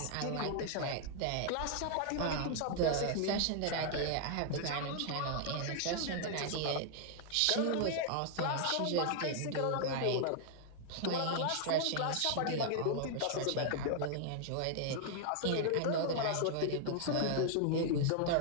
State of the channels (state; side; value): different; both; correlation 0.00